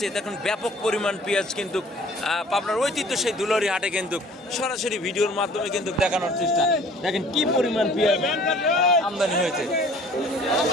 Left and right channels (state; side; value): normal; both; correlation 0.52